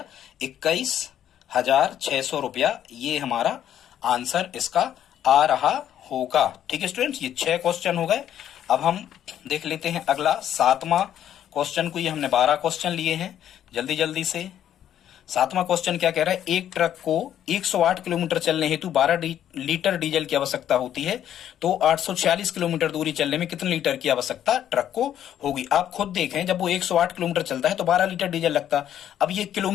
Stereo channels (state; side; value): quieter; right; 10.6 dB